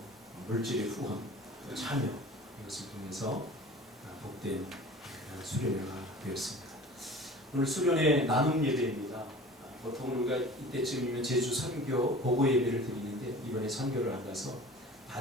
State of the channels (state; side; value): normal; both; correlation 0.41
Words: 물질의 후원, 또 참여 이것을 통해서 복된 수련회가 되었습니다. 오늘 수련회 나눔 예배입니다. 보통 우리가 이때쯤이면 제주 선교 보고 예배를 드리는데 이번에 선교를 안 가서